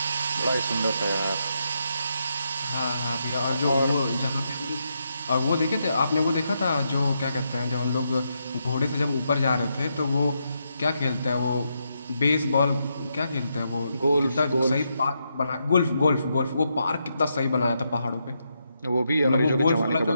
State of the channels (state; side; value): inverted; both; correlation -0.82